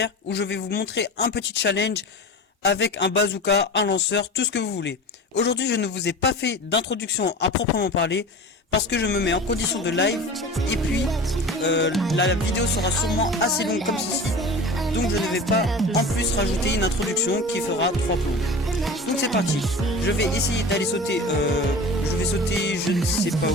où je vais vous montrer un petit challenge avec un bazooka, un lanceur, tout ce que vous voulez. Aujourd'hui je ne vous ai pas fait d'introduction à proprement parler parce que je me mets en condition de live et puis la vidéo sera sûrement assez longue comme ceci. Donc je ne vais pas en plus rajouter une introduction qui fera 3 plombs. Donc c'est parti, je vais essayer d'aller sauter, je vais sauter je ne sais pas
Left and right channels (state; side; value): normal; both; correlation 0.34